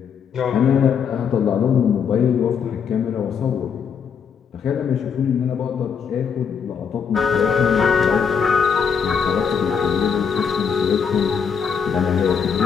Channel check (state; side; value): quieter; right; 6.8 dB